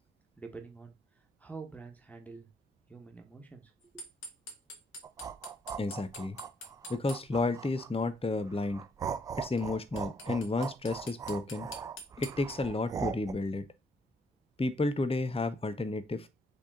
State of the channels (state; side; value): normal; both; correlation 0.72